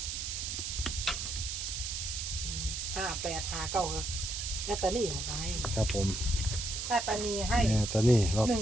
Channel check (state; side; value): noise; right; hiss, 4 dB below the sound